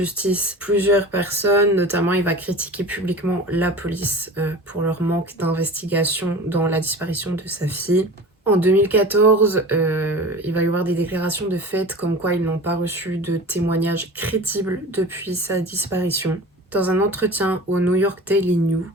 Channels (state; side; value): normal; both; correlation 0.36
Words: plusieurs personnes, notamment il va critiquer publiquement la police pour leur manque d'investigation dans la disparition de sa fille. En 2014, il va y avoir des déclarations de fait comme quoi ils n'ont pas reçu de témoignages crédibles depuis sa disparition. Dans un entretien au New York Daily News,